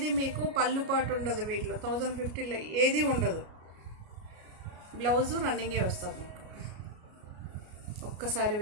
మీకు పళ్ళు పాటు ఉండదు వీటిలో. 1050లో ఏది ఉండదు. బ్లౌజు రన్నింగే వస్తుంది మీకు. ఒక్కసారి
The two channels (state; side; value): late; left; 33 ms